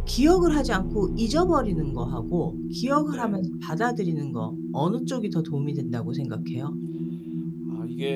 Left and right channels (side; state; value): both; identical; correlation 1.00